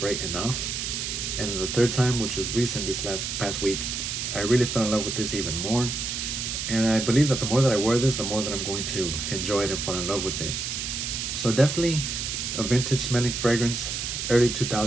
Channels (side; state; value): right; noise; hiss, 3 dB below the sound